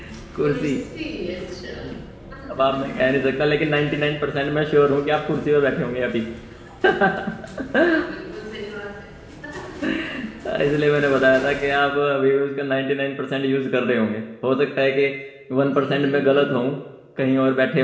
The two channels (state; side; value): identical; both; correlation 1.00